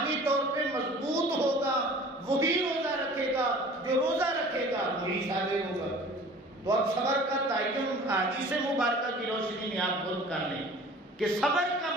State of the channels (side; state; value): both; normal; correlation 0.46